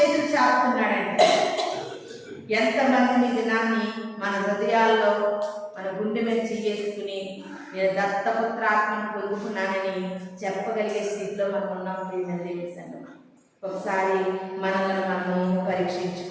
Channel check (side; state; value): both; identical; correlation 1.00